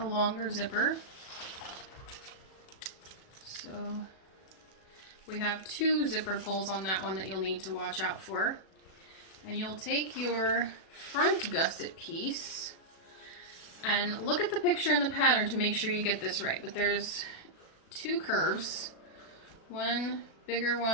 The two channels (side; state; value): right; late; 37 ms